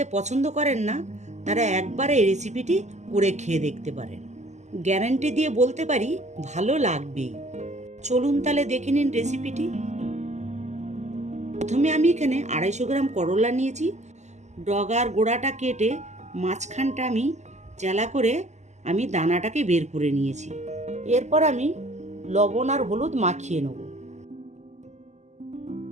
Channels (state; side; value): late; left; 0.33 ms